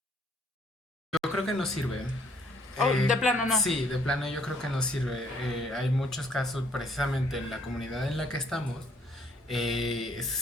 Yo creo que no sirve. Oh, de plano no. Sí, de plano yo creo que no sirve. Hay muchos casos, precisamente en la comunidad en la que estamos,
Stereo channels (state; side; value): normal; both; correlation 0.65